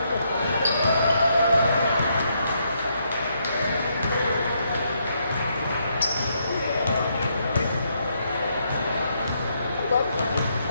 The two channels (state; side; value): inverted; both; correlation -0.76